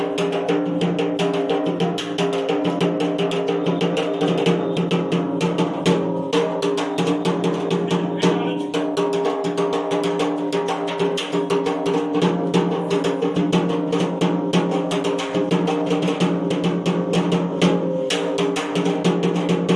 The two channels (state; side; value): identical; both; correlation 1.00